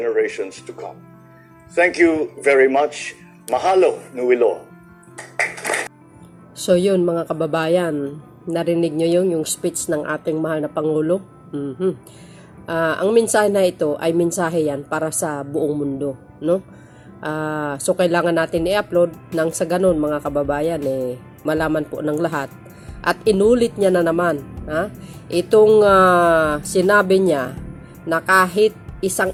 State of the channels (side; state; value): both; identical; correlation 1.00